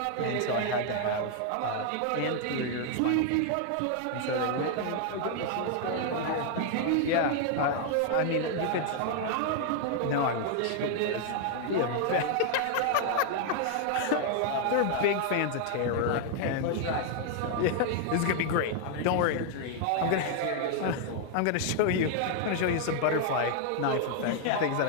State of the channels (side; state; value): both; different; correlation 0.00